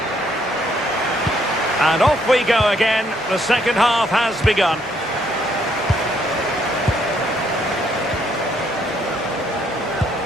And off we go again. The second half has begun.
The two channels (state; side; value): normal; both; correlation 0.70